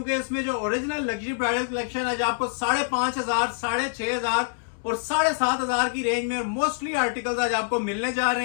इसमें जो ओरिजिनल लग्जरी ब्राइडल कलेक्शन आज आपको 5,500, 6,500 और 7,500 की रेंज में मोस्टली आर्टिकल्स आज आपको मिलने जा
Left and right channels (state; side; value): silent; right; 61 dB below the other